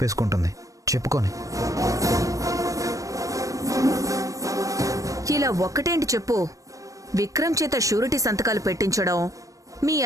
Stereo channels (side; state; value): left; late; 0.16 ms